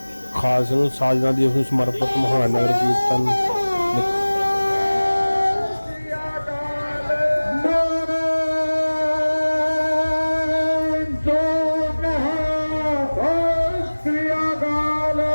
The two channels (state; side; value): inverted; both; correlation -1.00